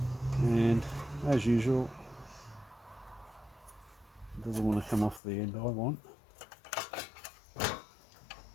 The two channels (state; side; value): drops out; right; at 5.2 s